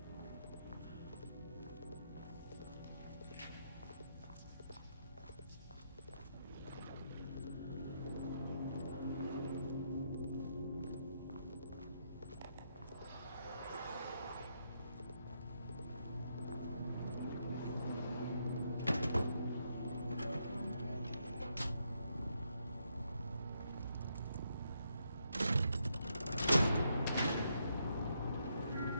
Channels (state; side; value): inverted; both; correlation -0.79